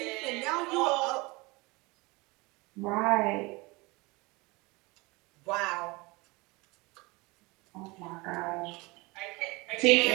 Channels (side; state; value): left; quieter; 24.7 dB